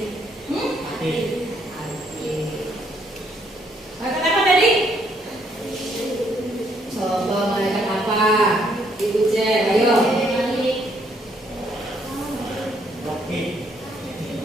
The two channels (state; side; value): normal; both; correlation 0.70